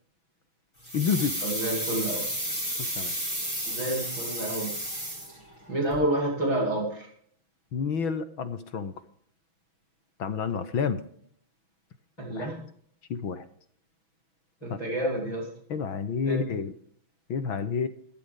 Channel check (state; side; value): late; right; 6.2 ms